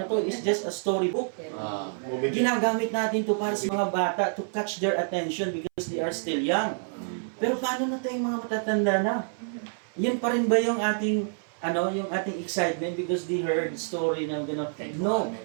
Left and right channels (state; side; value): silent; left; 60 dB below the other